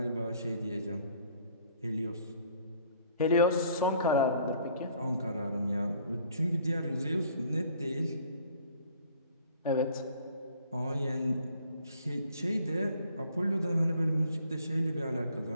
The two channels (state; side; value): inverted; both; correlation -0.58